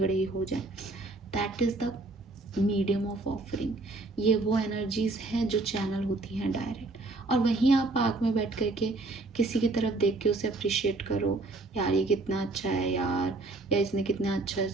ही हो जाए। That is the medium of offering. ये वो एनर्जीज हैं जो चैनल होती हैं डायरेक्ट, और वहीं आप पार्क में बैठ करके किसी की तरफ देख के उसे अप्रिशिएट करो, यार ये कितना अच्छा है यार, या इसने कितना अच्छा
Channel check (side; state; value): left; quieter; 3.2 dB